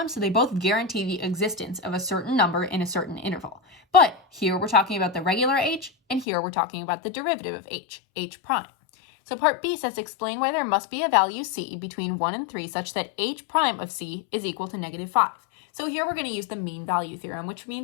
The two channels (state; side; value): drops out; right; at 6.2 s